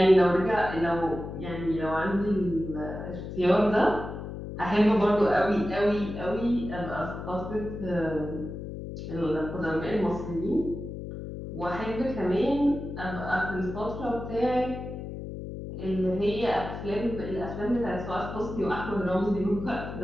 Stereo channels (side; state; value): left; noise; hum, 8 dB below the sound